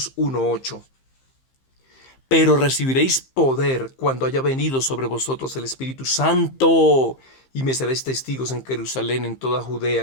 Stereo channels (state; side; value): late; right; 15 ms